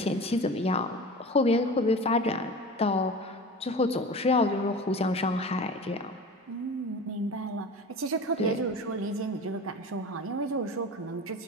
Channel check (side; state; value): both; normal; correlation 0.34